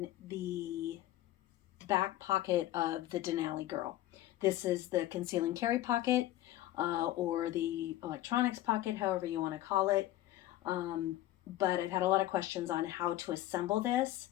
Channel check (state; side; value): quieter; right; 14.8 dB